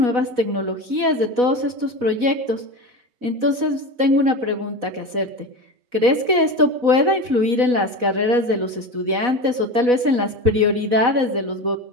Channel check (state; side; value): late; left; 4.1 ms